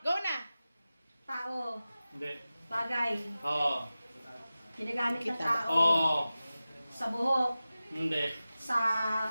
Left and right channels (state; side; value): inverted; both; correlation -0.95